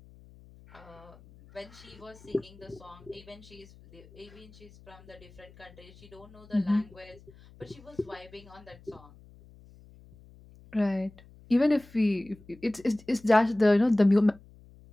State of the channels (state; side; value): noise; left; hum, 23 dB below the sound